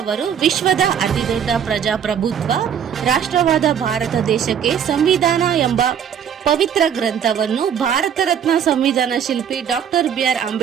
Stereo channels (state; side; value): quieter; left; 8.4 dB